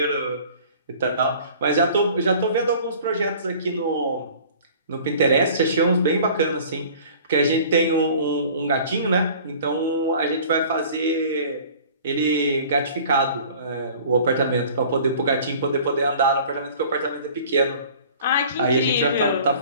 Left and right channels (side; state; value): both; inverted; correlation -0.47